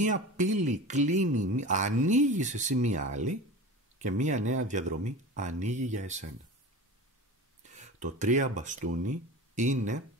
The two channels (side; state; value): both; normal; correlation 0.32